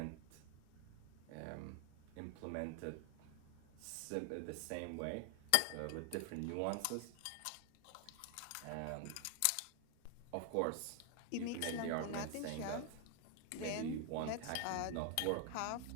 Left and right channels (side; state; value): both; different; correlation 0.00